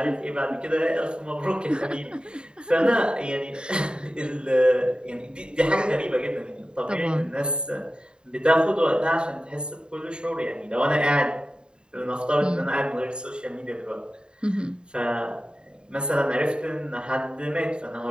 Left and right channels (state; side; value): late; left; 0.050 ms